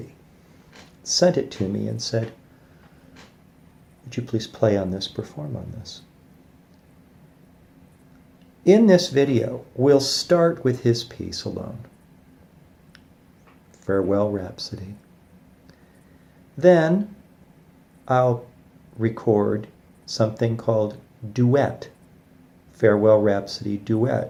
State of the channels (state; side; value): identical; both; correlation 1.00